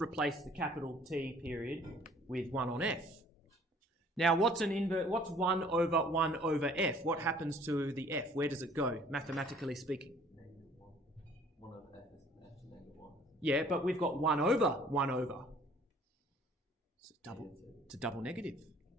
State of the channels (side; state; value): both; normal; correlation 0.55